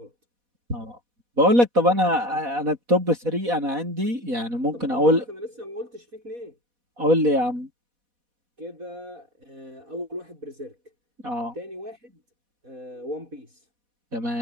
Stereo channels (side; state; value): left; late; 4.1 ms